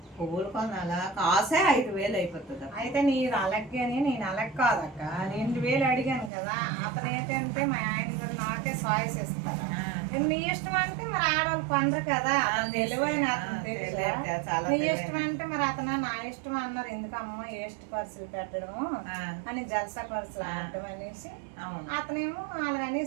పువ్వులు కొనాలా, కాసే 5,000 అయిపోతుంది. అయితే నీరు అలగ్గాని నేను అలగ్ కాదక్క. 2,000 అడిగాను కదా. అతను ఏంటంటే మా ఆయన గారు నాకే సాయిస్ ఇస్తారు. నీ ఇష్టం అంటే మరి ఆడవాళ్ళు కొనరు కదా. తెలివైన అతను తెలుసు. నీ ఇష్టం అంటే మరి అతను నా ఇష్టం అన్నారు. ఎందుకమ్మా వేస్ట్ ఖర్చులు పెట్టడము అని జల్సా ఖర్చులు ఆడటం అనేసి అతనేమో అలాగ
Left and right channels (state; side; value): drops out; left; at 6.3 s